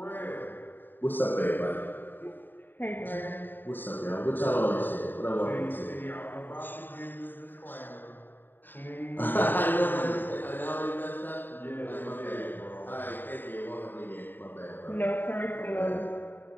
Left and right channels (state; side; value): late; right; 0.092 ms